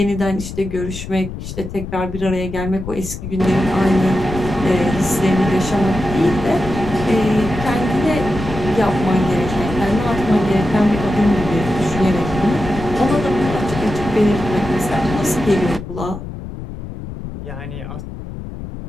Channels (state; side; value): noise; left; rumble, 9 dB below the sound